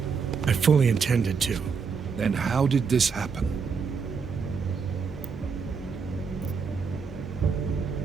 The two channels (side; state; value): left; quieter; 5.6 dB